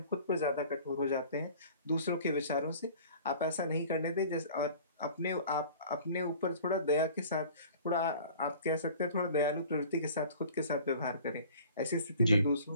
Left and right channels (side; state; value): both; inverted; correlation -0.47